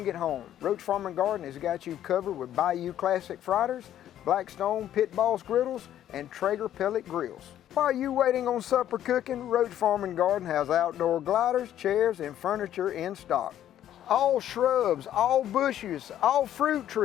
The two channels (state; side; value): quieter; right; 11.4 dB